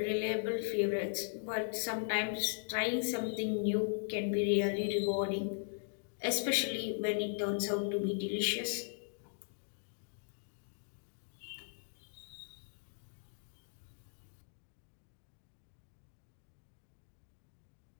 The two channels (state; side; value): silent; right; digital silence